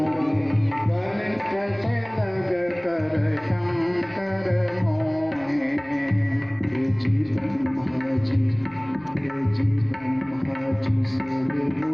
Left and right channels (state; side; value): noise; left; rumble, 28 dB below the sound